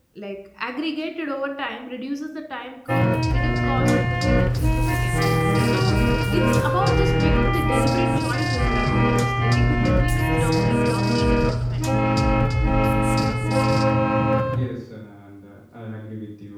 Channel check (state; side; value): identical; both; correlation 1.00